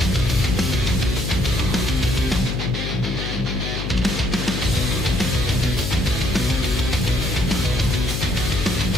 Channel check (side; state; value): left; noise; hum, 4 dB below the sound